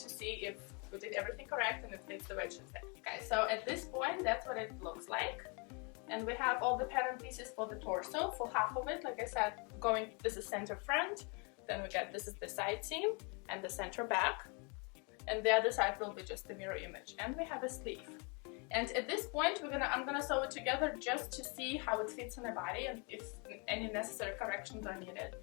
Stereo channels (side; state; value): right; quieter; 33.5 dB